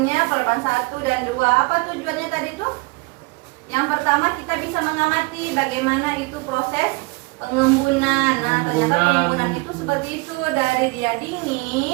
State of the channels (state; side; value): quieter; left; 26.5 dB